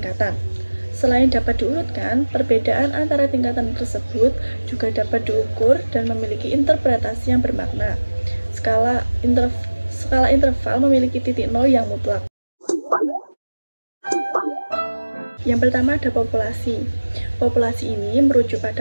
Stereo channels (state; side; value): inverted; both; correlation -1.00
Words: Selain dapat diurutkan, perbedaan antara tingkatan tersebut juga dapat diukur dan memiliki interpretasi yang bermakna. Skala interval memiliki titik nol yang mutlak. Yang pertama ada populasi. Populasi ini merujuk